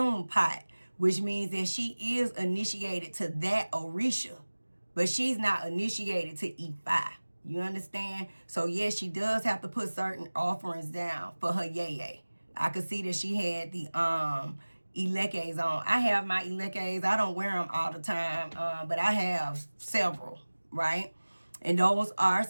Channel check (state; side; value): inverted; both; correlation -1.00